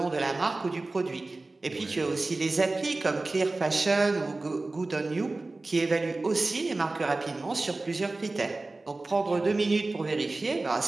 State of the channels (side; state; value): left; quieter; 3.2 dB